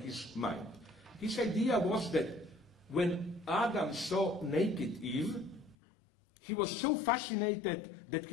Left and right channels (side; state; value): right; drops out; at 5.8 s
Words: his mind. His idea was that when Adam saw naked Eve, he was so fascinated that